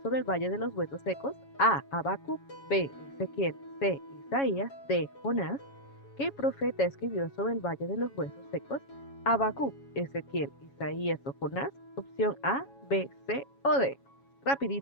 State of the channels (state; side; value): late; right; 7.2 ms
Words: el Valle de los Huesos Secos? A. Habacuc. B. Ezequiel. C. Isaías. D. Jonás. ¿Qué profeta escribió sobre el Valle de los Huesos Secos? Habacuc, Ezequiel, Isaías o Jonás. Opción A, B, C o D.